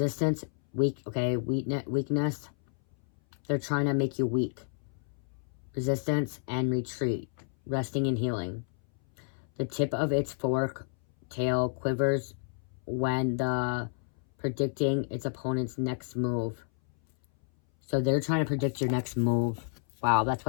weak. Okay, weakness. They're trying to make you weak. Resistance and retreat. Resting and healing. The tip of its fork tail quivers when predicting its opponent's next move. So they're trying to predict your next move. Wow, that's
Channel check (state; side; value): silent; right; 58 dB below the other